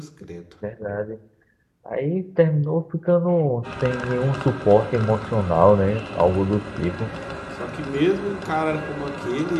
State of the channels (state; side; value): identical; both; correlation 1.00